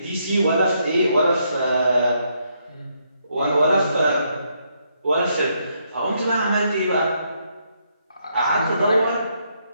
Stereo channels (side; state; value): both; inverted; correlation -0.76